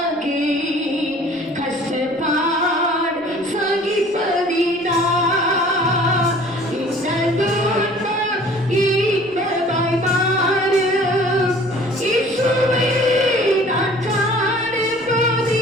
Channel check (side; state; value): left; noise; rumble, 30 dB below the sound